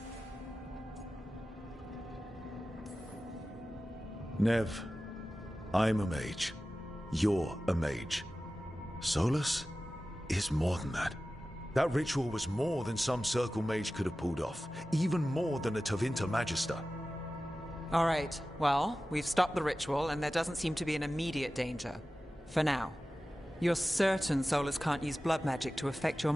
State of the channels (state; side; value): normal; both; correlation 0.95